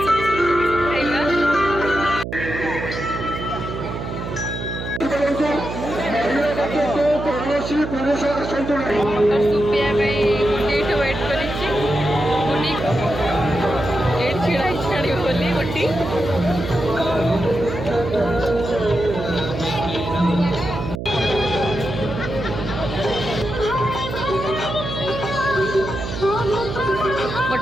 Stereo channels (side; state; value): right; noise; hum, 6 dB below the sound